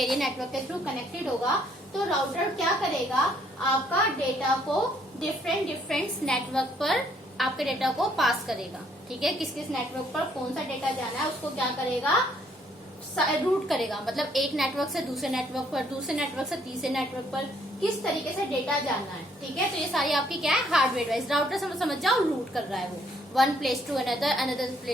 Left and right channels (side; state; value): both; normal; correlation 0.67